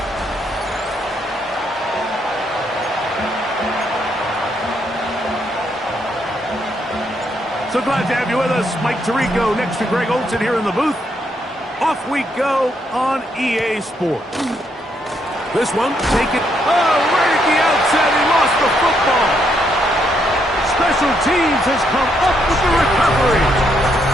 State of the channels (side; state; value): both; normal; correlation 0.75